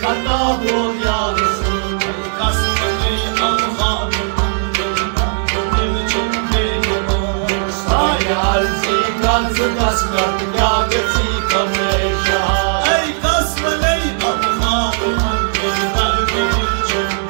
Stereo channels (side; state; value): left; silent; digital silence